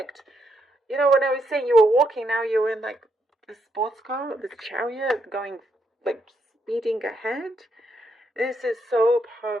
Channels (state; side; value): normal; both; correlation 0.77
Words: You know, when I was saying you were walking, now you're in like the sports car, the Chariot, going like speeding ahead. This is so